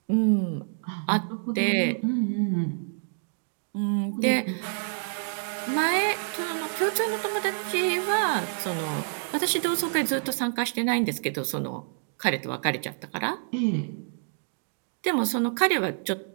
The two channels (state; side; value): silent; left; digital silence